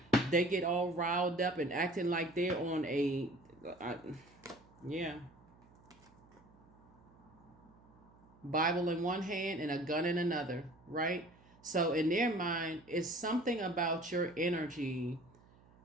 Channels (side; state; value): right; noise; hum, 27 dB below the sound